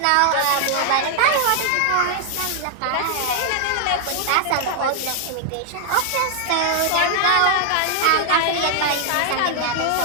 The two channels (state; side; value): different; both; correlation 0.00